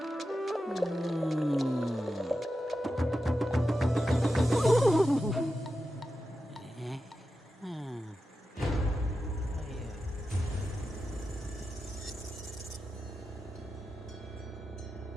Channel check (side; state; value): both; normal; correlation 0.91